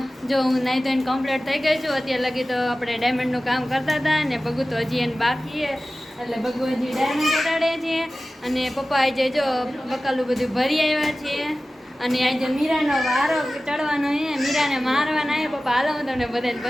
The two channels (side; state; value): both; normal; correlation 0.96